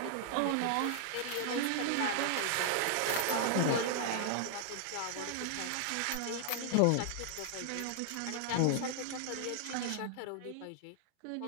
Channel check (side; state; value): both; different; correlation 0.00